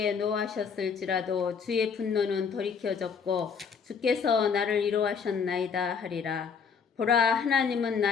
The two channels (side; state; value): right; quieter; 6.1 dB